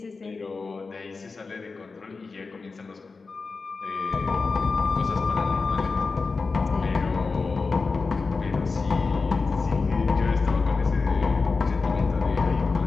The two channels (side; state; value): right; quieter; 4.3 dB